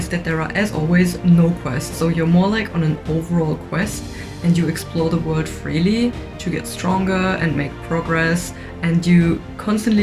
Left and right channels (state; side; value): identical; both; correlation 1.00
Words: that there are, as always, no quests, so you're more like on an overall quest and you explore the world freely to get stronger and make progress, and you